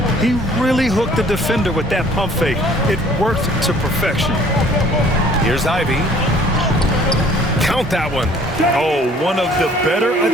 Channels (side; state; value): both; normal; correlation 0.55